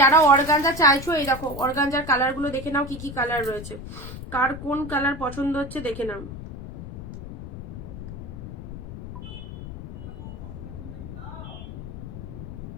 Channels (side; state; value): left; noise; rumble, 10 dB below the sound